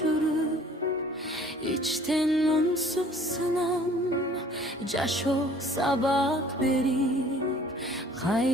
içten unsuz sınam Caşo sabak berip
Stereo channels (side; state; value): both; normal; correlation 0.53